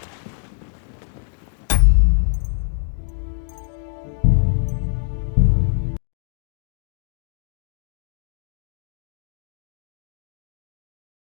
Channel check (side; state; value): right; silent; digital silence